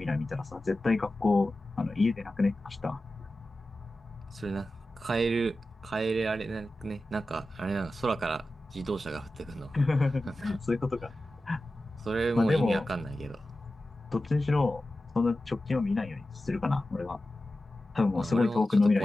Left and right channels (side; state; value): both; normal; correlation 0.94